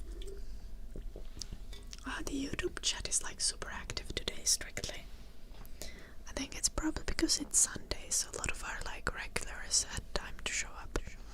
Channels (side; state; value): both; identical; correlation 1.00